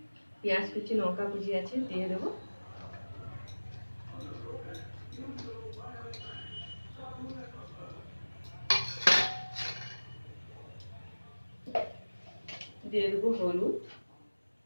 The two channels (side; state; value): both; inverted; correlation -1.00